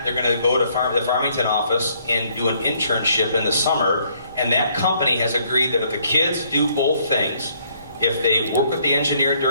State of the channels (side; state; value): both; inverted; correlation -0.67